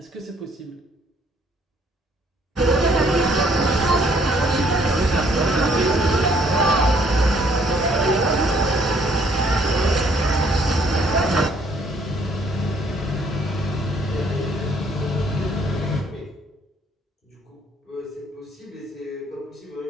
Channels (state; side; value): normal; both; correlation 0.64